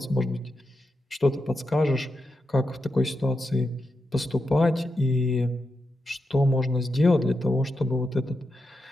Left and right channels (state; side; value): normal; both; correlation 0.87